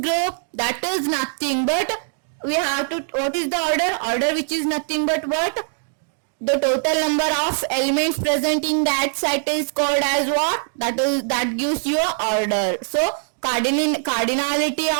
That is nothing but we have to, what is the order which is nothing but what? The total number of elements present in that set is called as what? That gives you a order. So cardinality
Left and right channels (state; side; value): silent; left; digital silence